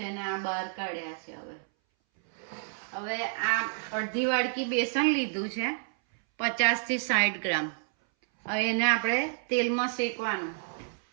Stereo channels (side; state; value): left; silent; 58 dB below the other